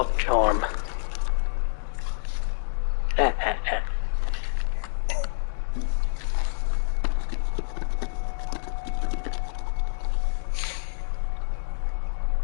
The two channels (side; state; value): right; silent; digital silence